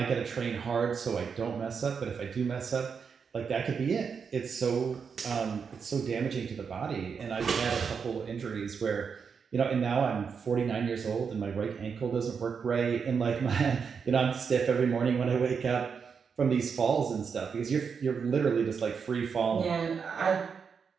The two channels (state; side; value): quieter; left; 6.2 dB